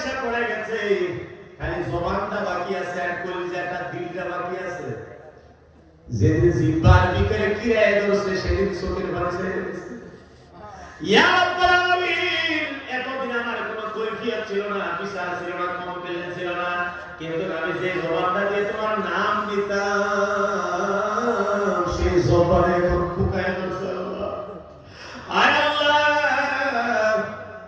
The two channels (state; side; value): identical; both; correlation 1.00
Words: পড়ে গেছে, খালি জবানটা বাকি আছে আর কলিজাটা, দিলটা বাকি আছে। যেদিন জিহ্বার ভিতরে কিরায় ধরছে, সেদিন চোখের পানি ছেড়ে দিয়েছে। ইয়া রাব্বুল আলামিন, এতদিন আমার কোনো কৈফিয়ত ছিল না, বিচার ছিল না, কমপ্লেন ছিল না, কিন্তু আমি যে জবানটা দিয়ে তোমার নাম নিতাম, সেই জবানে এখন ফুকায় ধরছে আল্লাহ। আয় আল্লাহ,